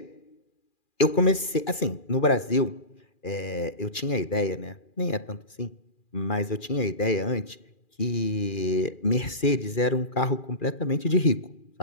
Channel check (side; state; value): right; late; 2.4 ms